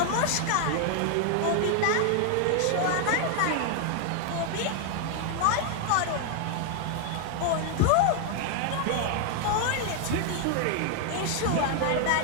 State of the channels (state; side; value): different; both; correlation 0.00